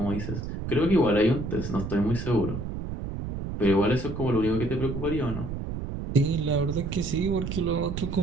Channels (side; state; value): right; noise; rumble, 6 dB below the sound